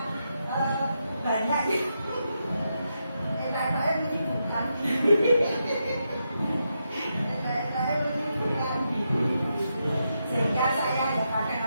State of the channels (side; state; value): both; inverted; correlation -0.84